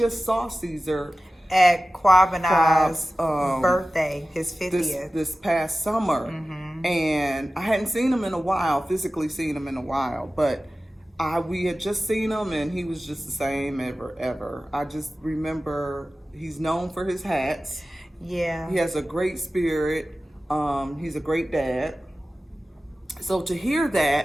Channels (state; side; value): normal; both; correlation 0.95